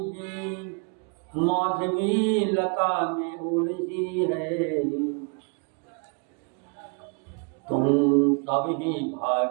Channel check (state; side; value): quieter; left; 37.2 dB